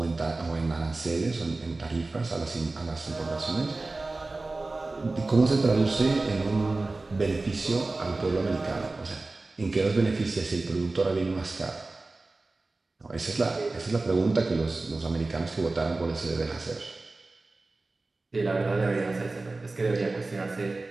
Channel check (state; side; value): quieter; left; 3.3 dB